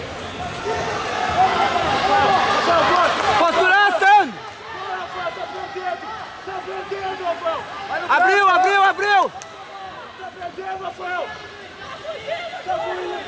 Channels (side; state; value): both; identical; correlation 1.00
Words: Posturação! Tá perdendo, Rafael! Abriu, abriu, abriu! Tá perdendo, Rafael! Tá fugindo!